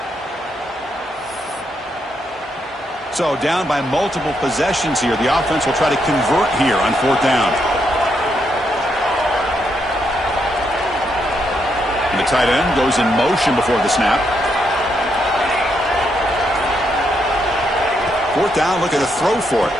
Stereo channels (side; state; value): both; normal; correlation 0.78